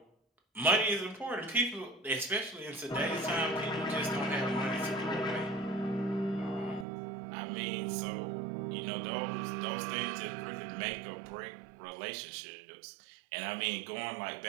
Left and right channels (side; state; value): left; drops out; at 6.9 s